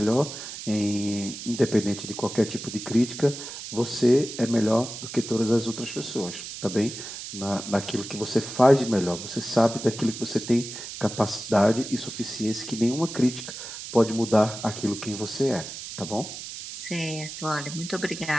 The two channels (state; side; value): noise; right; hiss, 10 dB below the sound